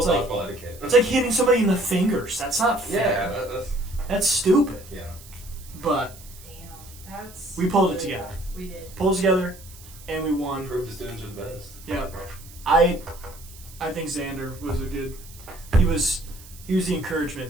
It's like, dodgeball etiquette. it's like hitting somebody in the fingers. That's not Yeah, fair. that's That's stupid. yeah. But Damn, that's. We pulled it really together. rough. We did. pulled together, and we won. Prove the students are the best. Yeah, I think Xander was a good. He was the encouragement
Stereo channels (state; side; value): noise; right; hiss, 20 dB below the sound